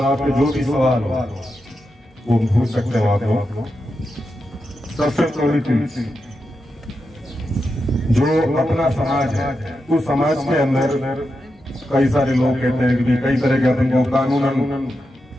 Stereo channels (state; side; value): normal; both; correlation 0.88